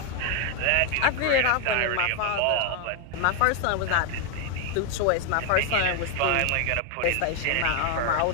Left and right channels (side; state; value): both; different; correlation 0.00